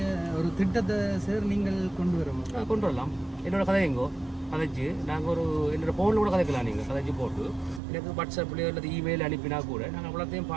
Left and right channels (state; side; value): drops out; left; at 7.8 s